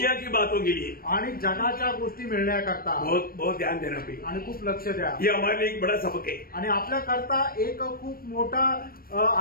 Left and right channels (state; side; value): late; right; 0.43 ms